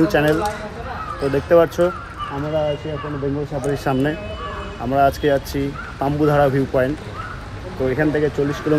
channel. তো দেখতে পাচ্ছ আমরা আছি এখন বেঙ্গল সাফারির সামনে। আমরা আজকে যাচ্ছি তাম্বুধারা ভিউ পয়েন্ট। তো এখান থেকে 40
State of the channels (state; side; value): identical; both; correlation 1.00